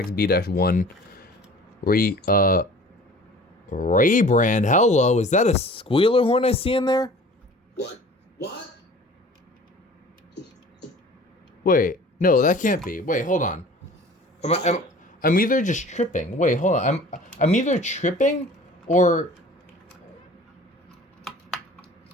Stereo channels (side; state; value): both; normal; correlation 0.45